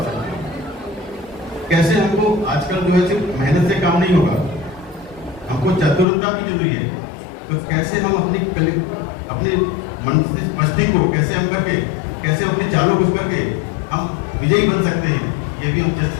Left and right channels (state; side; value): drops out; right; at 6.1 s